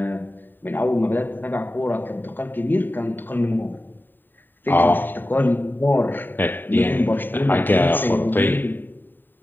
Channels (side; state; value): right; late; 0.092 ms